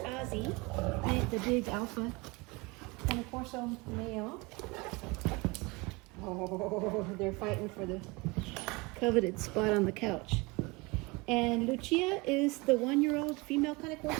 Ozzy, the big alpha, Cane Coro male. Oh, they're fighting for the coveted spot on the couch. And Lucia is the 1-year-old female Cane Coro.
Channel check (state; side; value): quieter; left; 25.2 dB